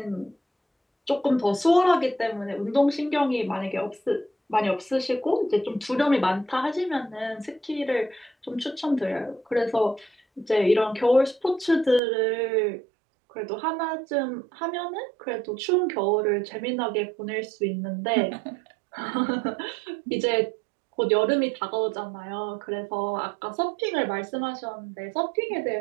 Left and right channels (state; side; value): drops out; left; at 12.0 s